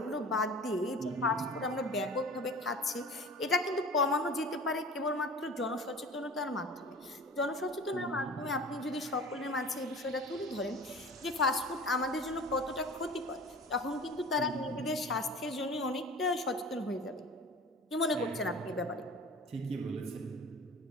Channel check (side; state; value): both; normal; correlation 0.39